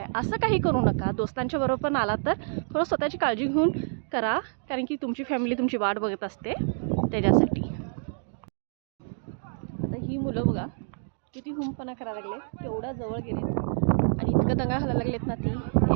असं काही करू नका. दोस्तांच्या बरोबर पण आला तर थोडं स्वतःची काळजी घेऊन करा कारण की तुमची फॅमिली तुमची वाट बघत असते त्याच्यासाठी. आता ही मुलं बघा किती हुंपणा करायला लागले, एवढ्या जवळ गेले आणि इतकं दंगा घालायला लागलेत ना, ती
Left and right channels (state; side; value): silent; left; digital silence